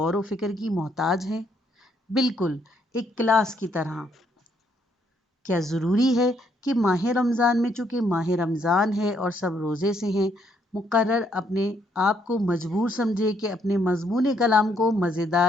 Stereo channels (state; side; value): normal; both; correlation 0.71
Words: و فکر کی محتاج ہیں؟ بالکل ایک کلاس کی طرح۔ کیا ضروری ہے کہ ماہ رمضان میں چونکہ ماہ رمضان ہے اور سب روزے سے ہیں، مقرر اپنے آپ کو مجبور سمجھے کہ اپنے مضمون کلام کو